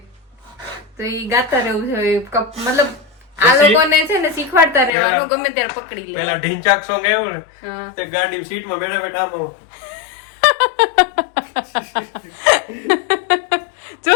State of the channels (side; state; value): right; drops out; at 4.9 s